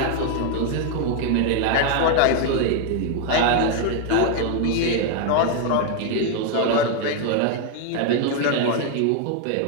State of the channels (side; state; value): both; different; correlation 0.01